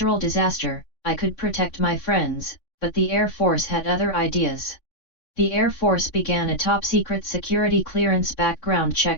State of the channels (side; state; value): right; late; 3.5 ms